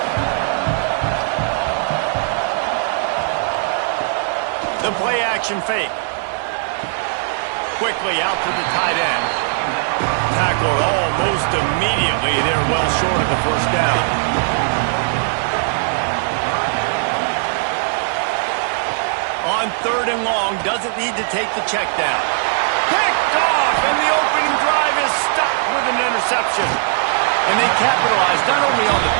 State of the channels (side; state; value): left; silent; 58 dB below the other